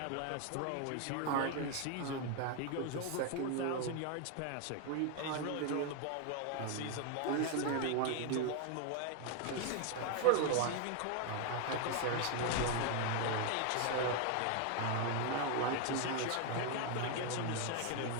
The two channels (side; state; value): both; different; correlation 0.01